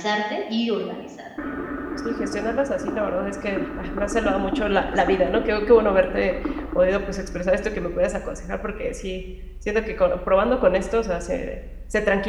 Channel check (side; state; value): both; identical; correlation 1.00